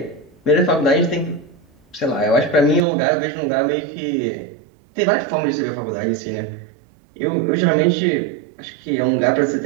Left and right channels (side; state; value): left; drops out; at 2.8 s